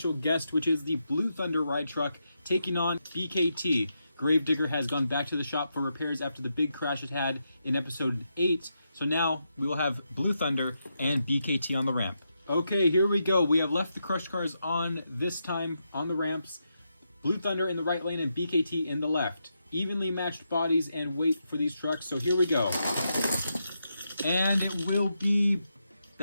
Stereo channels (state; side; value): inverted; both; correlation -0.84